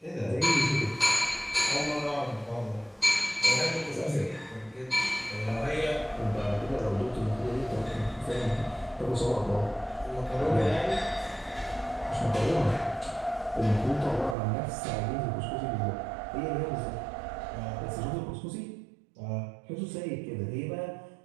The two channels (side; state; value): left; drops out; at 14.4 s